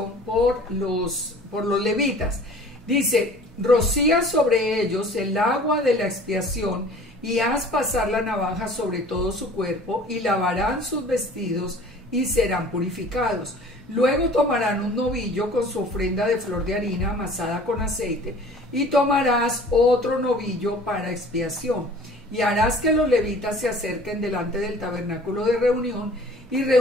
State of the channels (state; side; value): normal; both; correlation 0.47